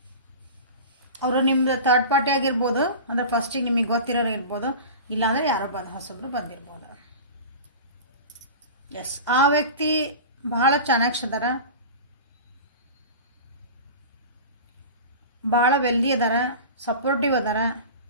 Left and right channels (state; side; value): inverted; both; correlation -0.33